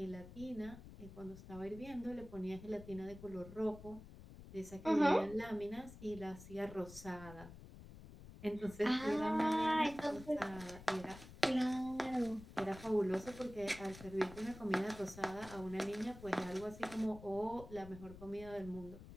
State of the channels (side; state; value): left; noise; rumble, 15 dB below the sound